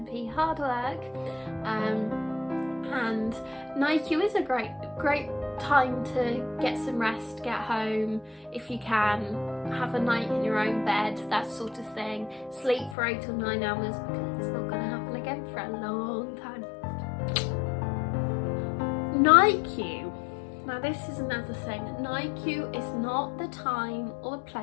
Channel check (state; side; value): drops out; right; at 13.0 s